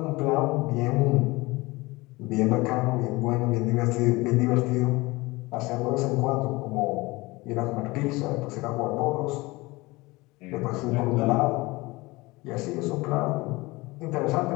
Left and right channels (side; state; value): right; quieter; 22.3 dB